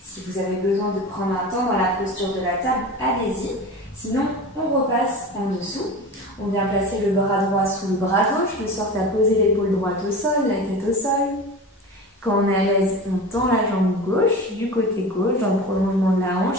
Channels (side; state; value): both; normal; correlation 0.32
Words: Si vous avez besoin de prendre un temps dans la posture de la table, allez-y. Sinon, on repasse en dessous. On vient placer le bras droit sous le bras gauche, de sorte à poser l'épaule droite au sol, la tête au sol. Quand on est à l'aise, on tend la jambe gauche du côté gauche dans le prolongement de la